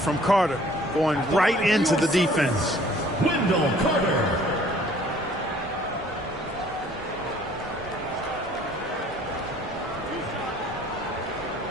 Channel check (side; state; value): both; normal; correlation 0.55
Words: Carter, going right into the defense. Wendell Carter.